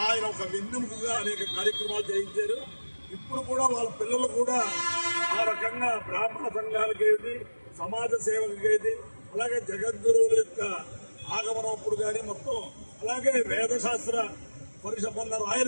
ఆయన ఒక వెన్నెముకగా అనేక కార్యక్రమాలు చేయించారు. ఇప్పుడు కూడా వాళ్ళ పిల్లలు కూడా ఆ రకంగా బ్రాహ్మణ సంఘాలకేది సమాజ సేవకేది అలాగే జగద్గురువుల యొక్క ఆగమనప్పుడు కానీ మొత్తం అలాగే వేదశాస్త్ర పరిషత్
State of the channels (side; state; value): both; inverted; correlation -1.00